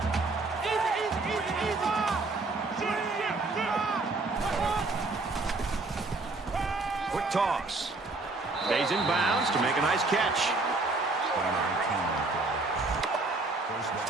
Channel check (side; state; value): left; quieter; 3.4 dB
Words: Quick toss. Stays in bounds to make a nice catch.